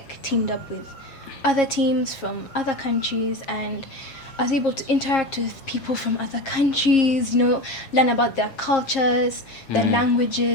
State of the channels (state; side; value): late; right; 7.4 ms